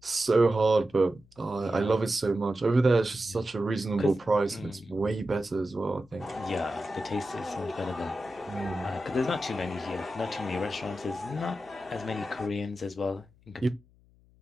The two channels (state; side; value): noise; left; hum, 29 dB below the sound